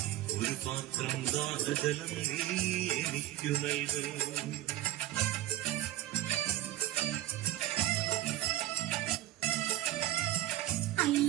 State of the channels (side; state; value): left; quieter; 14.5 dB